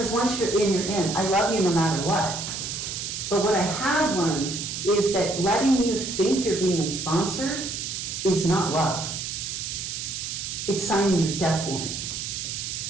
once you're in. I love you no matter what. But what I have learned is that letting you think you're being sponsored is not love. It's signing your death warrant.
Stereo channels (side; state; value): right; noise; hiss, 5 dB below the sound